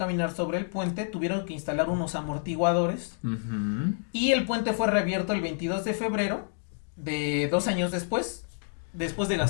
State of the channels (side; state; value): right; silent; digital silence